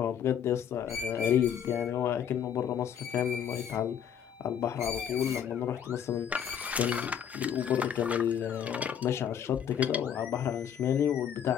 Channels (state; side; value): quieter; right; 8.7 dB